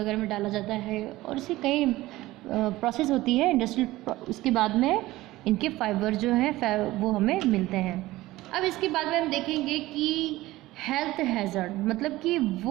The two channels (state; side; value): quieter; left; 17.7 dB